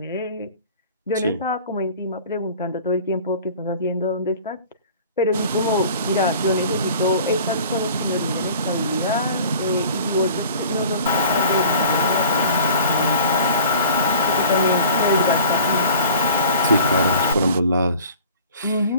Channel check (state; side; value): inverted; both; correlation -0.46